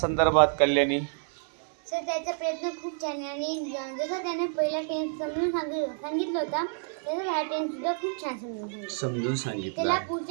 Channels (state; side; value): silent; left; 59 dB below the other